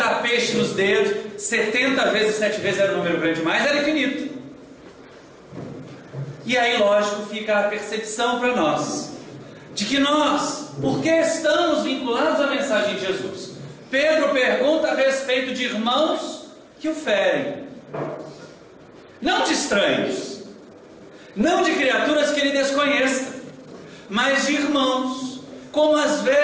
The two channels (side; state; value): both; identical; correlation 1.00